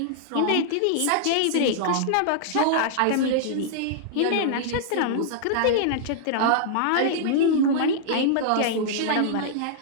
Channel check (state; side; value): different; both; correlation -0.01